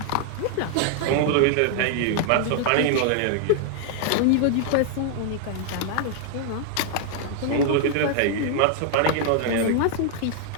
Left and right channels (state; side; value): different; both; correlation 0.00